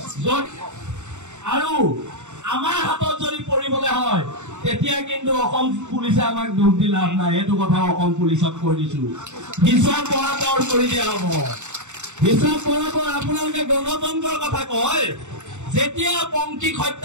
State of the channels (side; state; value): left; late; 0.84 ms